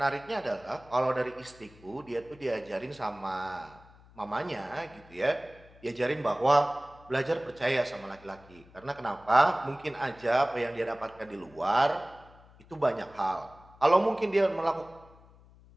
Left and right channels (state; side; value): noise; left; hum, 24 dB below the sound